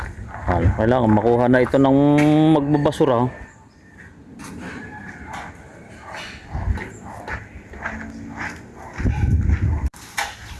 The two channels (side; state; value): both; identical; correlation 1.00